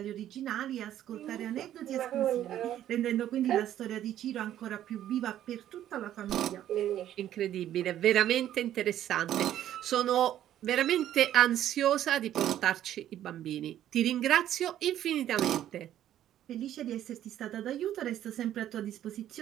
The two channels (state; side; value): quieter; left; 11.7 dB